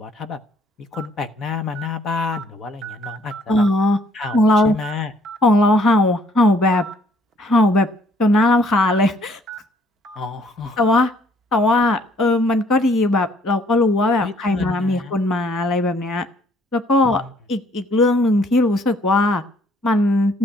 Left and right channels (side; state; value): both; normal; correlation 0.63